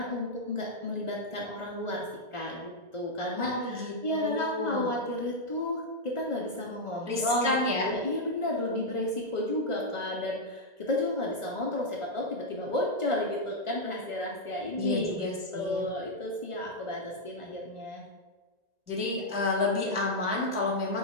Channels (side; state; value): left; late; 1.9 ms